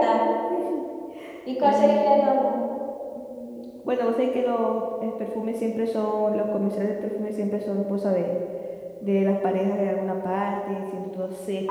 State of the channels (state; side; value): identical; both; correlation 1.00